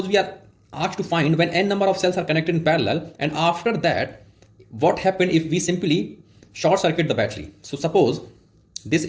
we are asked to find when n number of cells are connected in parallel, and after that what happened if we simply short circuit the battery. So suppose this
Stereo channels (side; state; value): both; identical; correlation 1.00